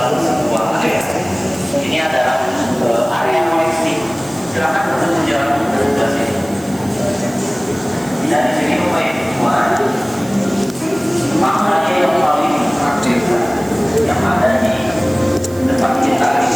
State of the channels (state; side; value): noise; right; hiss, 20 dB below the sound